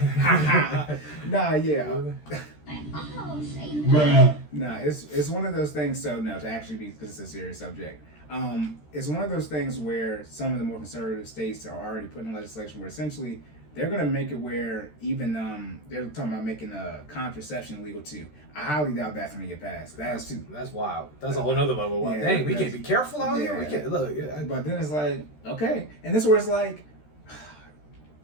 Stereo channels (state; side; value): late; right; 13 ms